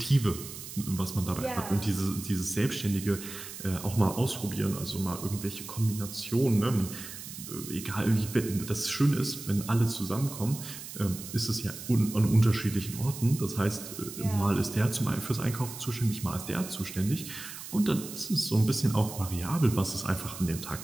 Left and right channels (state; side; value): noise; right; hiss, 11 dB below the sound